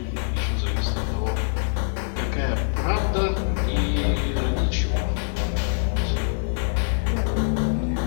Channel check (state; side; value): silent; right; 62 dB below the other